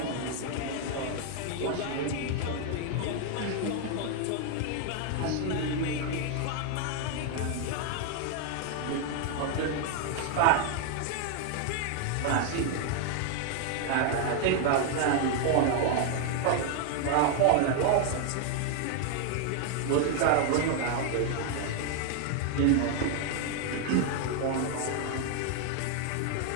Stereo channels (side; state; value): both; different; correlation 0.00